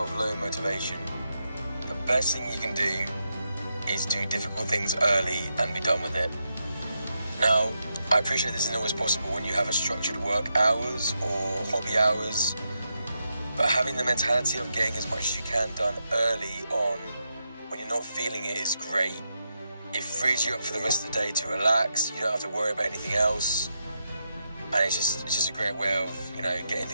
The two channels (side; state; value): both; inverted; correlation -0.85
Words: low motivation, the best thing you can do is do difficult things early and be done with it. Now, I appreciate this isn't always possible when you have a structured work hours or hobby hours, but having the mentality of getting as much as you can done early on when you're not feeling it is great. It frees you up for the rest of the day to relax. You don't have to worry about anything else, and it's just a great way of getting